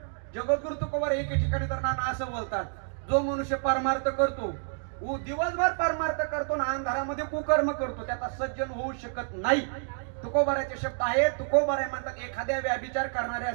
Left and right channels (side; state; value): left; silent; 59 dB below the other